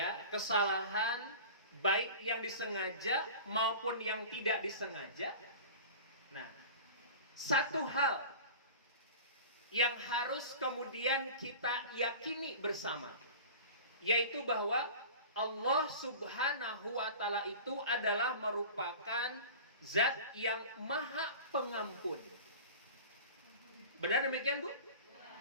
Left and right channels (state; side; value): inverted; both; correlation -0.37